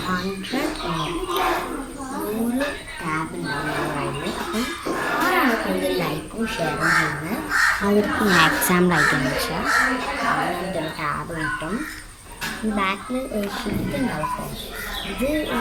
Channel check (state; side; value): identical; both; correlation 1.00